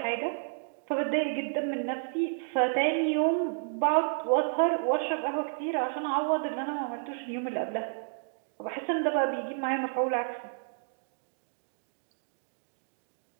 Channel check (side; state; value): left; silent; digital silence